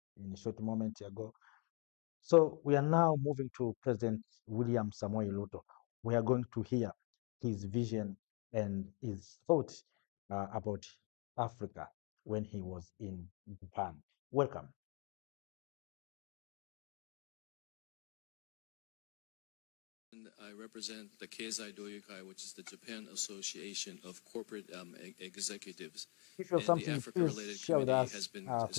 in a short moment ago. So we are now moving to President William Samuel Ruto. We are going to hear his vision and his thoughts about Africa when he was in Japan. Welcome. I represent the Keizai Doyokai, which is the Japan Association of Corporate Executives. If you have And the something, please Africa-related share with committee us has been through the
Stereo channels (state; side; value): quieter; right; 34.7 dB